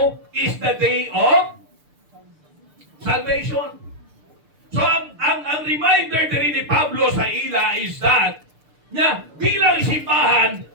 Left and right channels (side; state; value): left; late; 6.7 ms